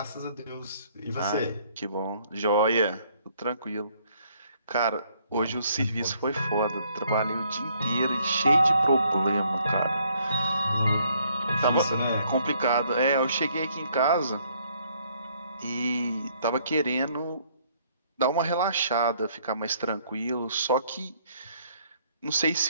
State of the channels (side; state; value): both; inverted; correlation -0.66